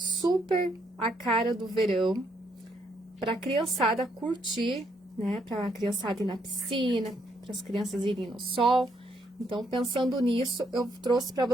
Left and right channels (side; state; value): both; normal; correlation 0.74